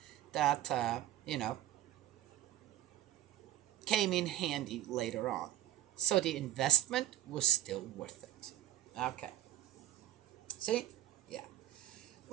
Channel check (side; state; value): left; quieter; 13.9 dB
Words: that, came in handy later on. So the investment was still worth it. Okay. See? Yeah.